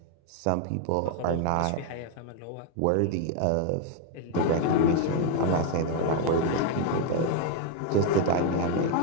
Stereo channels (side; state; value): both; different; correlation 0.01